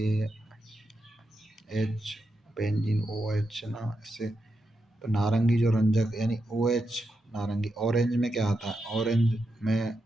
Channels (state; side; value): normal; both; correlation 0.86